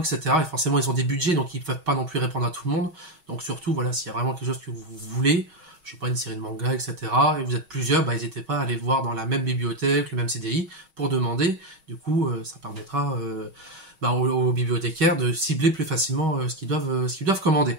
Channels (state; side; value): late; left; 6.3 ms